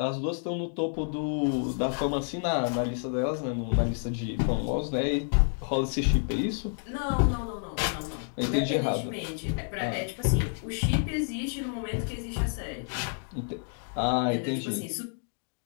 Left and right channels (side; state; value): right; silent; 58 dB below the other